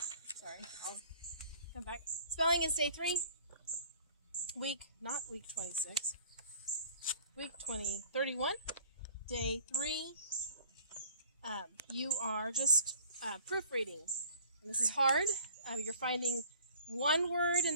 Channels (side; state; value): both; inverted; correlation -0.51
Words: I'll come back. Spelling is day 3. Not week 26. Week 31. Day 3. You are just proofreading. And this is hard. You're finding 1 word in